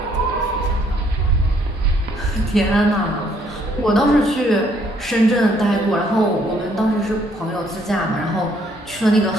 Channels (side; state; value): both; normal; correlation 0.67